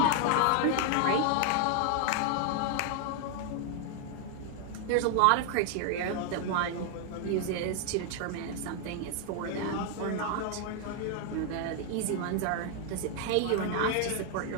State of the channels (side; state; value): both; different; correlation 0.00